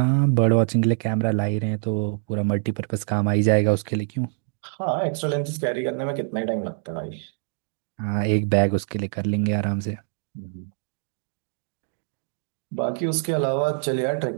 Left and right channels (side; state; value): left; silent; 61 dB below the other